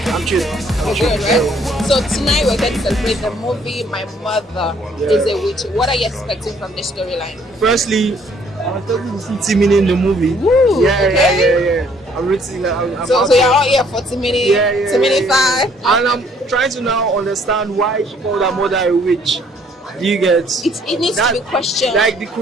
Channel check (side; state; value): both; normal; correlation 0.63